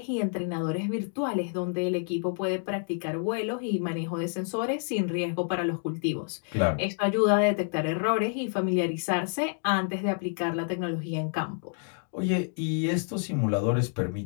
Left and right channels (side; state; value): right; silent; 59 dB below the other